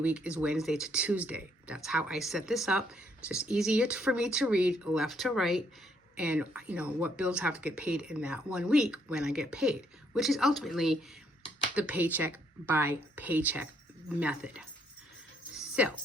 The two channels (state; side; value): normal; both; correlation 0.70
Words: is Wednesday to Tuesday. That's how I set this up. It's just easier for me to read left to right and, you know, what bills have to get paid in that 1 week when I get paid, which is ultimately the paycheck by paycheck method. So